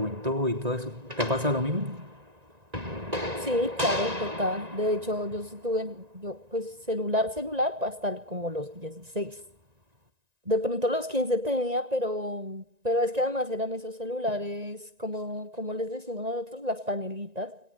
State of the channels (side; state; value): left; late; 1.9 ms